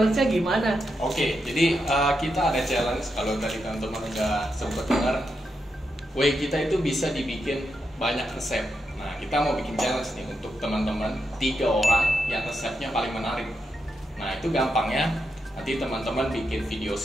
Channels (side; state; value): both; normal; correlation 0.85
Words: gimana? Oke, jadi kita ada challenge. Kalau tadi teman-teman udah sempat dengar, way kita itu bisa dibikin banyak resep. Nah, kita mau bikin challenge nih untuk teman-teman 3 orang yang resepnya paling menarik. Nah, itu gampangnya. Nanti teman-teman bikin video